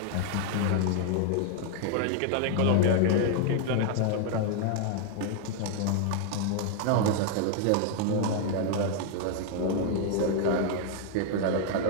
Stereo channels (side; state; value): both; different; correlation 0.00